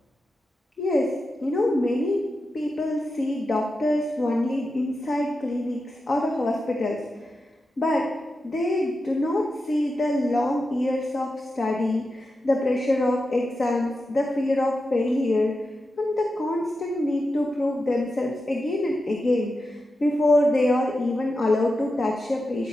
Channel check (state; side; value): normal; both; correlation 0.90